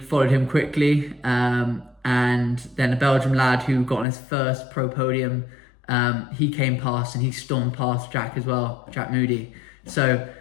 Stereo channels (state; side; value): drops out; right; at 4.0 s